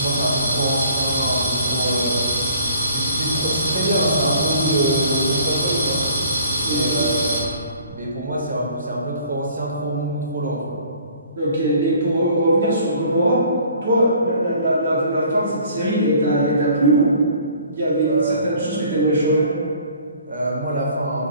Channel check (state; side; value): inverted; both; correlation -0.54